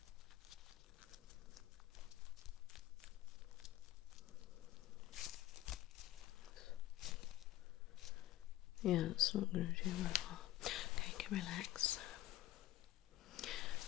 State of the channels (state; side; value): quieter; right; 15.1 dB